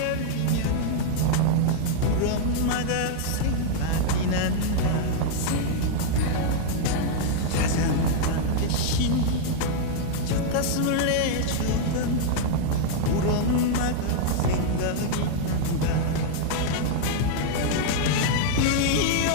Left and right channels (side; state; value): both; different; correlation -0.01